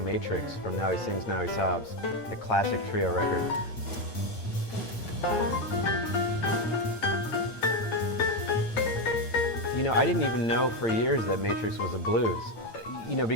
Matrix from Now He Sings, Now He Sobs, a classic trio record. You know, I didn't even know for years that Matrix was a blues. You know,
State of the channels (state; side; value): late; right; 8.9 ms